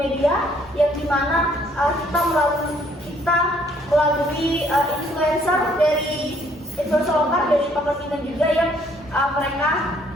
yang dimana kita melalui influencer lokal dari Pangkal Pinang juga yang mereka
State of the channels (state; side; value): normal; both; correlation 0.64